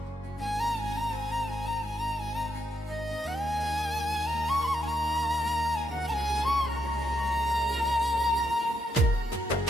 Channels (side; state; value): both; normal; correlation 0.79